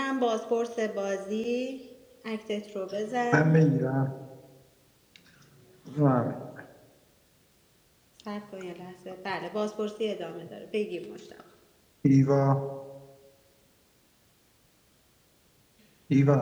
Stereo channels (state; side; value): identical; both; correlation 1.00